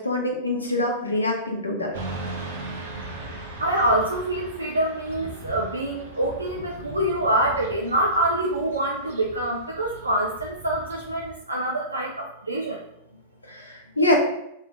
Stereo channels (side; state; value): both; inverted; correlation -0.36